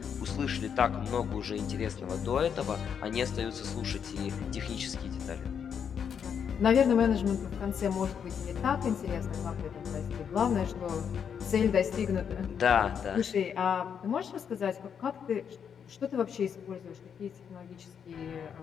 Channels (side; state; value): right; quieter; 7.5 dB